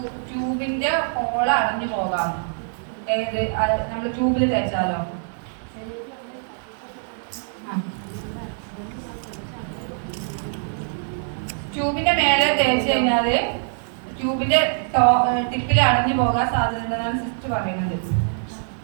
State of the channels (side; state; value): left; silent; 63 dB below the other